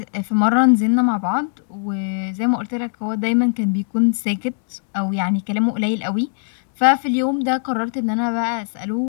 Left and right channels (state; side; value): silent; right; 65 dB below the other